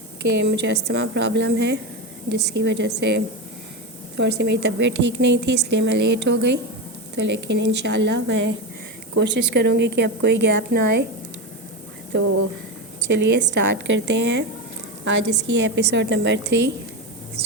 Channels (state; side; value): normal; both; correlation 0.16